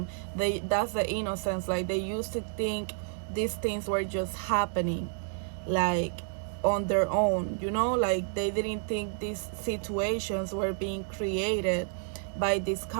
That's the innocence. Like they used to think these things were just happening, like on their own, you know, like they didn't think these situations were being created by this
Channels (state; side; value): silent; left; digital silence